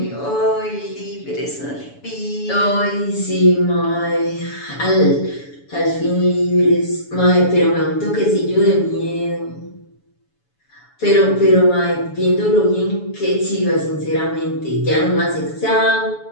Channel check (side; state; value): right; late; 7.0 ms